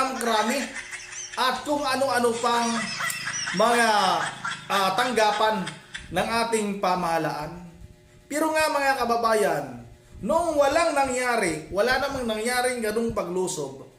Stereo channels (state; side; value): identical; both; correlation 1.00